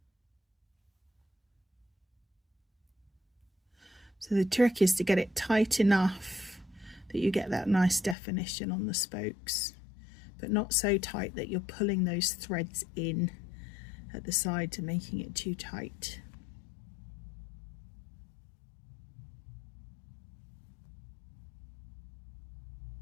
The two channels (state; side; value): drops out; right; at 8.2 s